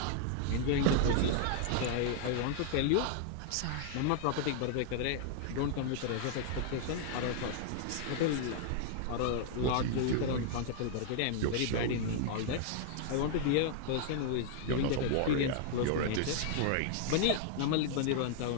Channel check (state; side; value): different; both; correlation -0.01